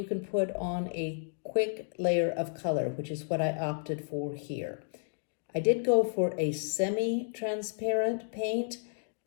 can put on a quick layer of color, which is what I opted for here. I did go for a semi-transparent paint.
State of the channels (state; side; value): silent; right; digital silence